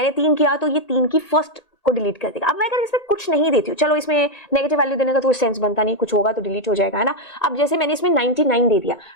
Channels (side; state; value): right; late; 1.7 ms